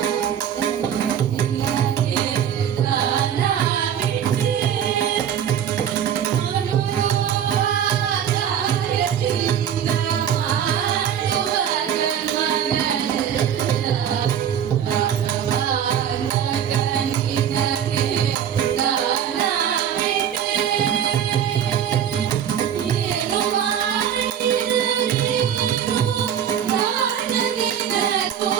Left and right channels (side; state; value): left; quieter; 9.2 dB